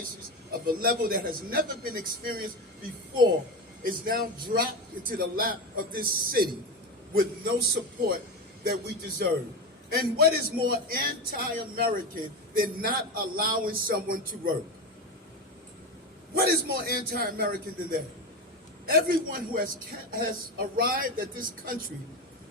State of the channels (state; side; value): normal; both; correlation 0.19